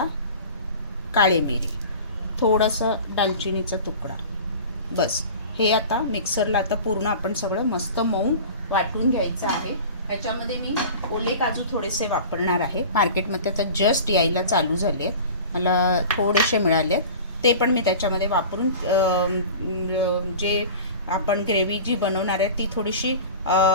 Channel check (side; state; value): both; inverted; correlation -0.38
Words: काळे मिरी, थोडासा दालचिनीचा तुकडा. बस. हे आता मिक्सरला पूर्ण आपण सगळं मस्त मऊ वाटून घ्यायचं आहे. ह्याच्यामध्ये मी ओले काजू थोडेसे वापरणार आहे. मार्केटमध्ये आता जस्ट यायला चालू झाले, मला थोडेसे मिळाले, ते पण मी त्याच्यामध्ये वापरून जे आपण ग्रेव्ही जी बनवणार आहे ती थोडीशी